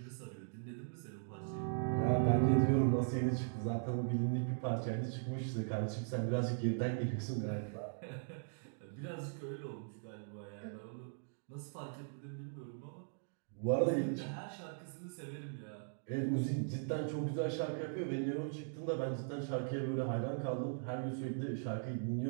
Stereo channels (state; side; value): silent; left; digital silence